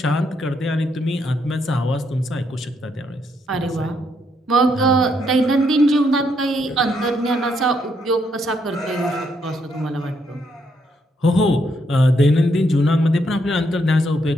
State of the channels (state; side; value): normal; both; correlation 0.75